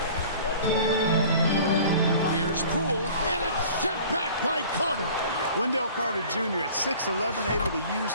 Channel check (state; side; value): inverted; both; correlation -0.46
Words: Here's Poole, and it's sent back by Carter. Wendell Carter Jr. at 6'11", able to use